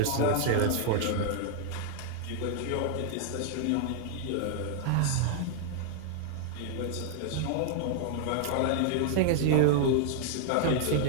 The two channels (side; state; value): both; different; correlation 0.00